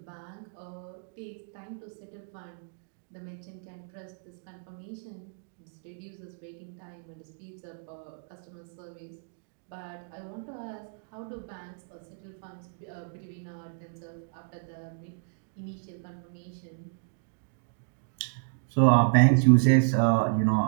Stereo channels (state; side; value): silent; left; digital silence